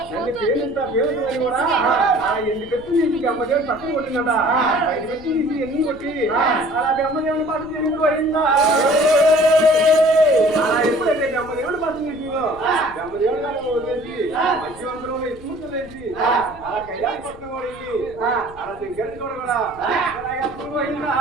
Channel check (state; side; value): noise; left; rumble, 20 dB below the sound